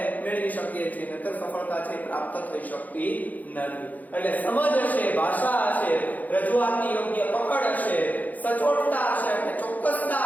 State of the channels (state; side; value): late; right; 0.080 ms